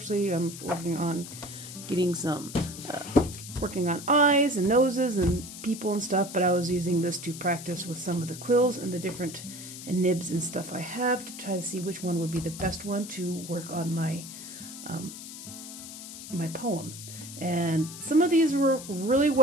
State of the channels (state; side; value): noise; left; hiss, 12 dB below the sound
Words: I'm working on getting some, working on eyes and noses and people and stuff, but I was using this to practice with some of the quills and the different nibs and stuff I have to try to see which one would be the best one to work on my my poem. And some of these were really